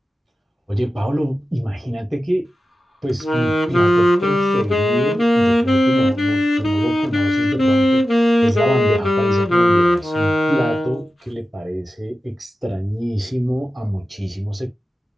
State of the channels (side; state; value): both; normal; correlation 0.93